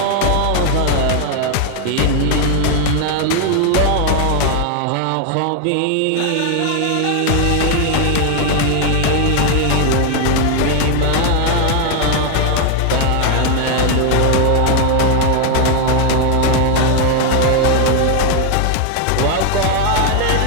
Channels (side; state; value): both; different; correlation 0.00